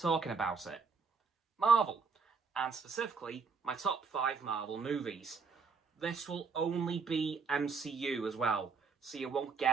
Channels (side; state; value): left; quieter; 5.1 dB